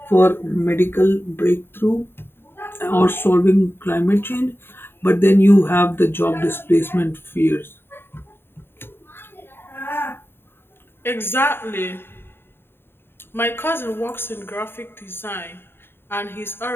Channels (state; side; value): late; right; 0.11 ms